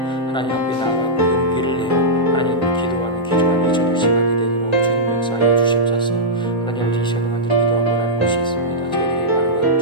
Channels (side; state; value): both; normal; correlation -0.11